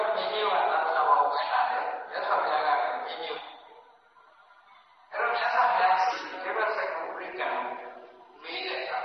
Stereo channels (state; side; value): identical; both; correlation 1.00